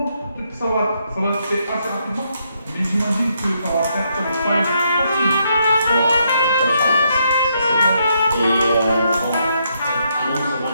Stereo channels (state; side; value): inverted; both; correlation -0.77